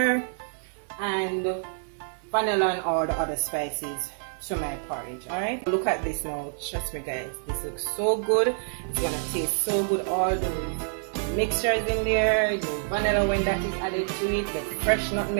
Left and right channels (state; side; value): silent; left; digital silence